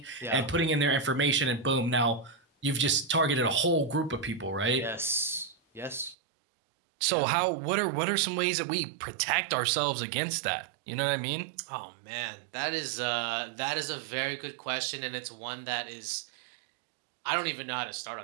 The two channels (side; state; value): left; drops out; at 6.2 s